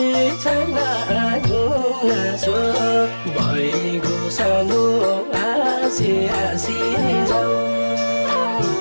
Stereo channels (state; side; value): inverted; both; correlation -1.00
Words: छैन गुनासो भइगयो सानो हाँसी हाँसी जाऊ